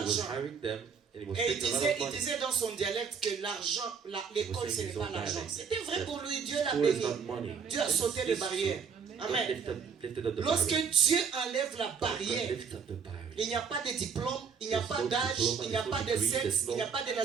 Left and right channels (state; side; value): quieter; left; 6.1 dB